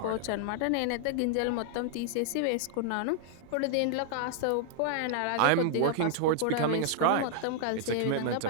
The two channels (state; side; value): different; both; correlation -0.01